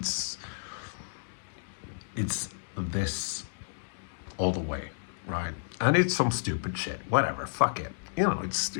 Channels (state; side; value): silent; right; digital silence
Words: this all the way, right? And it's some stupid shit. Whatever, fuck it. It's